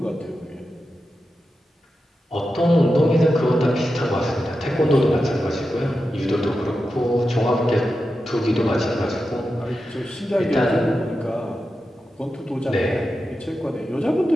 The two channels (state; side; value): normal; both; correlation 0.90